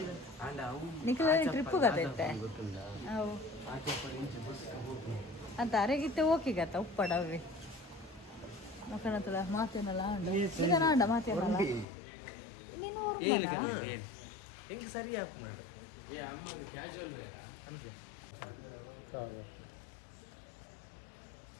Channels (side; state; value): right; drops out; at 11.9 s